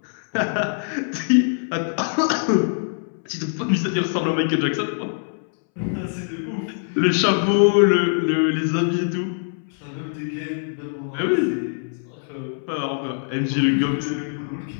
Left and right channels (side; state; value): right; silent; 63 dB below the other